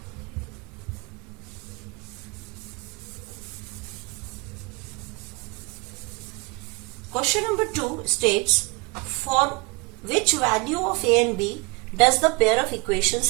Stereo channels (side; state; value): left; quieter; 27.1 dB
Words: Question number 2 states, for which value of a and b does the pair of